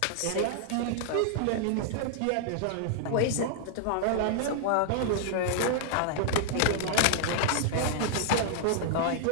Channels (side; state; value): both; different; correlation -0.01